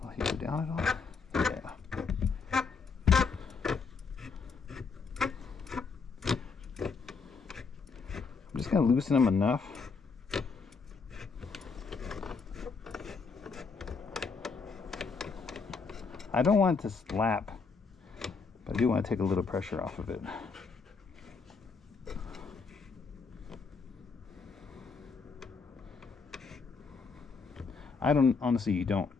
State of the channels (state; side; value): quieter; right; 5.0 dB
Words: Will he go down at all? Yeah. I'm just going to loosen them enough. I don't want it to slap, but I do want to take a little pressure off of it. I honestly don't